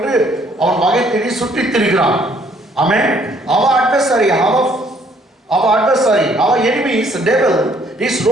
அவன் வகை தேடி சுற்றித் திரிகிறான். ஆமென். Our adversary, our enemy is the devil. He is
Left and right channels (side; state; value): both; normal; correlation 0.64